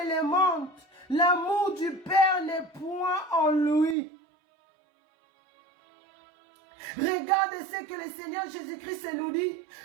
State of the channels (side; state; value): left; drops out; at 4.0 s